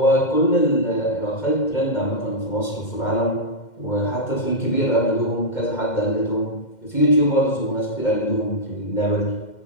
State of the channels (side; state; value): right; late; 2.1 ms